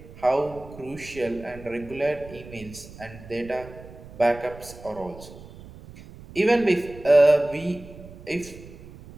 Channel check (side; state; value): right; noise; rumble, 17 dB below the sound